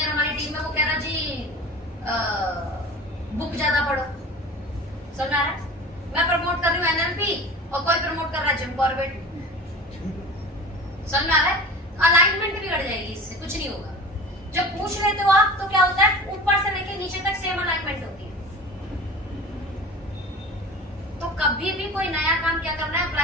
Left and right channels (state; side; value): normal; both; correlation 0.37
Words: हमारी टीम में वो कह रहा जी बुक ज्यादा पढ़ो। समझ आ रहा है? मैं प्रमोट कर रही हूँ एनएलपी और कोई प्रमोट कर रहा है जिम कॉर्बेट। समझ में आ रहा है? अलाइनमेंट बिगड़ जाएगी, इससे कुछ नहीं होगा। जब पूछ लेते हो आप तो क्या होता है, ऊपर से लेके नीचे तक सेम अलाइनमेंट होती है। तो कभी भी कोई नया काम क्या करना है,